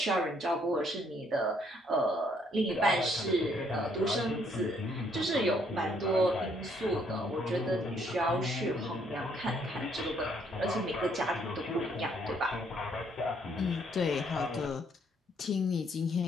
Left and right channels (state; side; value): normal; both; correlation 0.68